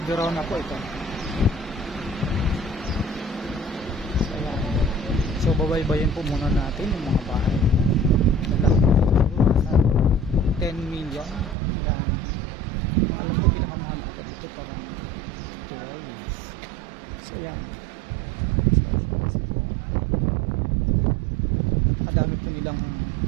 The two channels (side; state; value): left; drops out; at 11.6 s